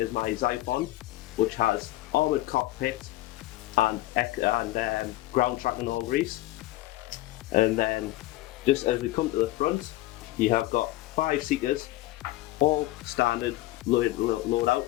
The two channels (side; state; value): right; quieter; 17.0 dB